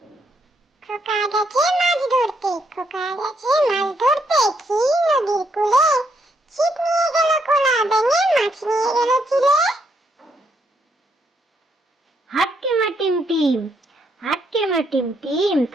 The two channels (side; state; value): both; normal; correlation 0.75